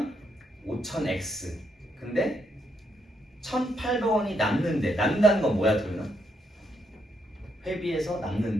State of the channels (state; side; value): normal; both; correlation 0.77